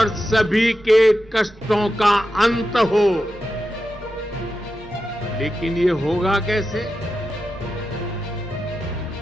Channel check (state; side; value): noise; right; rumble, 23 dB below the sound